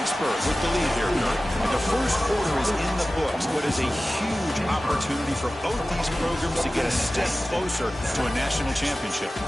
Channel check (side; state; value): both; normal; correlation 0.96